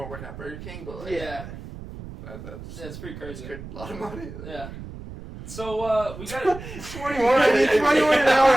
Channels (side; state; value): right; noise; rumble, 12 dB below the sound